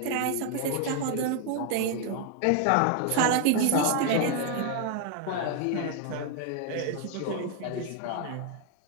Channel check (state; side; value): different; both; correlation 0.00